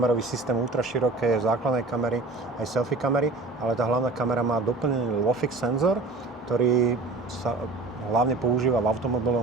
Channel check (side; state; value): left; quieter; 3.4 dB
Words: systém ultra široké základnej kamery, aj selfie kamery, ale tá hlavná kamera má doplnený LOFIX senzor, ktorý sa hlavne používa v